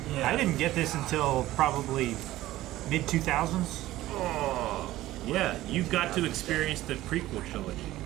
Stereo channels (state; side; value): quieter; left; 15.8 dB